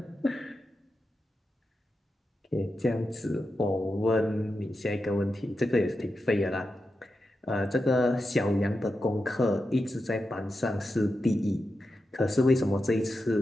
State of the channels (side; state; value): both; normal; correlation 0.89